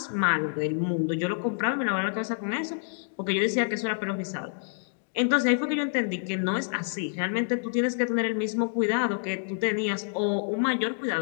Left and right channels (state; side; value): silent; right; digital silence